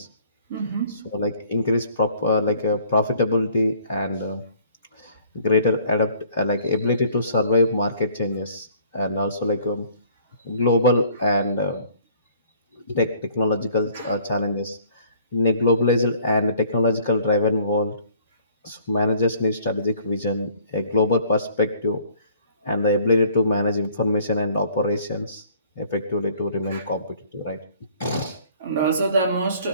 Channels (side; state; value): both; inverted; correlation -0.57